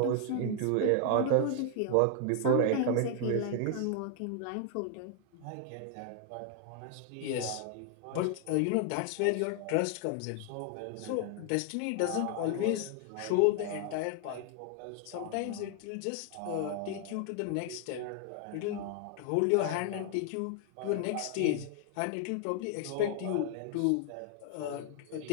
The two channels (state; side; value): different; both; correlation 0.00